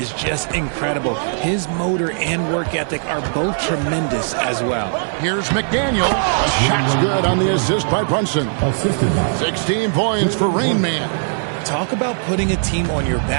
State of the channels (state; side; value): silent; left; digital silence